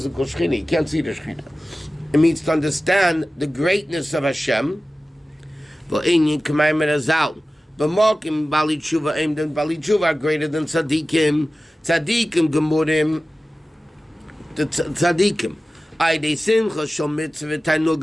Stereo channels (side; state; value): both; normal; correlation 0.96